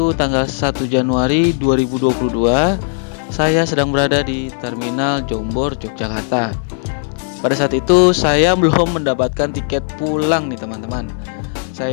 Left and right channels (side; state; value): right; silent; digital silence